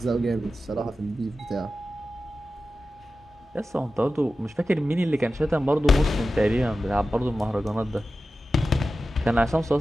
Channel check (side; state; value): both; normal; correlation 0.93